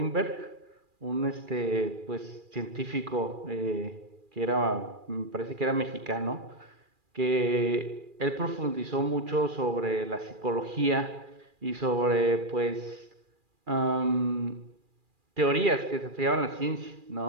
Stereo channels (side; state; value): left; late; 2.4 ms